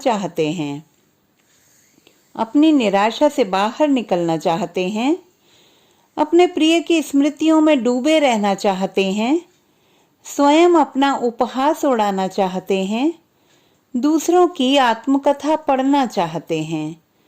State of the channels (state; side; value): identical; both; correlation 1.00